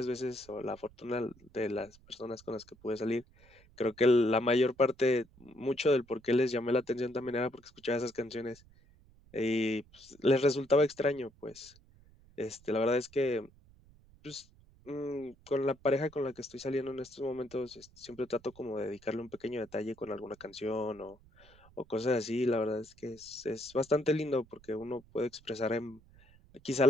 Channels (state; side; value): noise; right; rumble, 26 dB below the sound